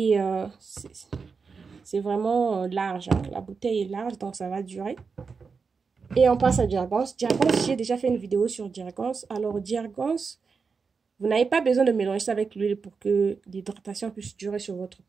c'est vraiment large. Hein. La bouteille est large, donc ça va durer. Et on passe à Jergens. Jergens, j'ai déjà fait une vidéo sur Jergens. Alors, Jergens, vous n'avez pas besoin de mélanger ça avec l'huile pour que l'hydratation puisse durer sur votre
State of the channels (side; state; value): left; quieter; 5.1 dB